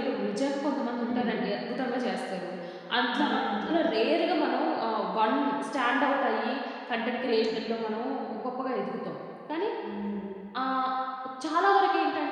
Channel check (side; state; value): both; identical; correlation 1.00